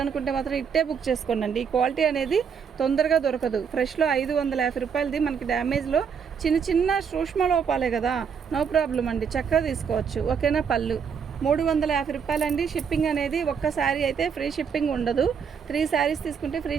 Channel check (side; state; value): left; quieter; 6.7 dB